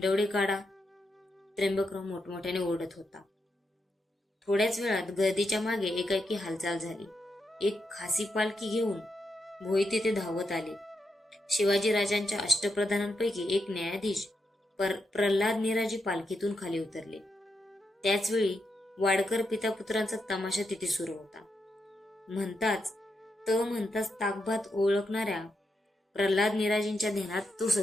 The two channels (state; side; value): normal; both; correlation 0.84